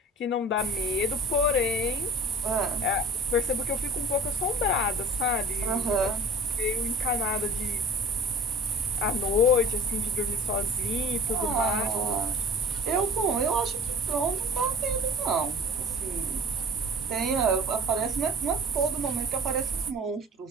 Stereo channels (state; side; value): normal; both; correlation 0.43